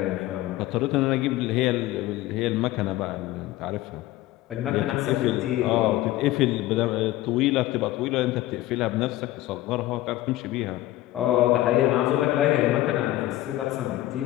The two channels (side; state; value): right; quieter; 15.9 dB